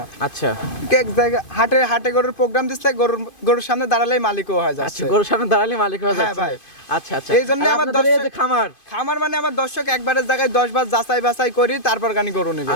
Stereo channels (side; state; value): right; late; 2.5 ms